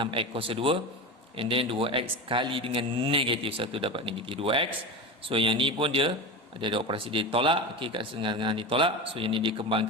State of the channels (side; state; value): both; normal; correlation 0.25